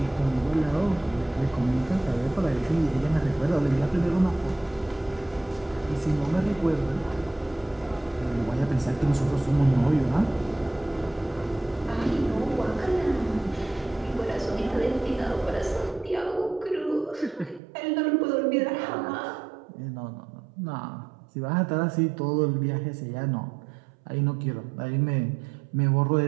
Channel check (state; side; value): drops out; left; at 17.6 s